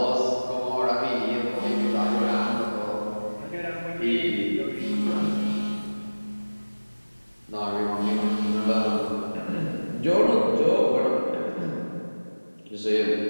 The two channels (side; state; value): both; inverted; correlation -1.00